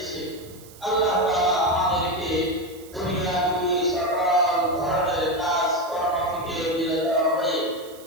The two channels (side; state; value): right; noise; hiss, 21 dB below the sound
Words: আল্লাহ তাআলা আমাদেরকে দুনিয়াবি সকল ধরনের কাজ কর্ম থেকে বিরত হয়ে